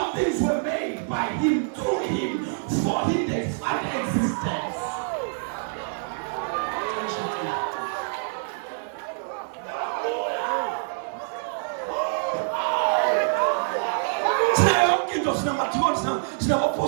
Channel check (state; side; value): silent; left; digital silence